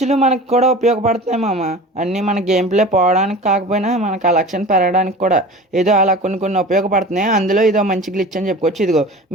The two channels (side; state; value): both; normal; correlation 0.37